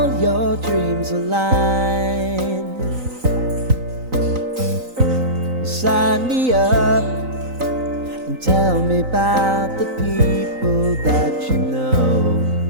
your dreams align. Sign me up and tell me about the people that you know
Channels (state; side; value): late; left; 3.9 ms